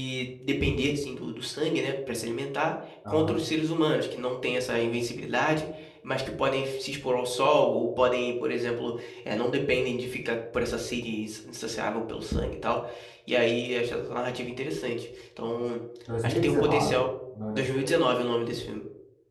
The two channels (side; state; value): both; identical; correlation 1.00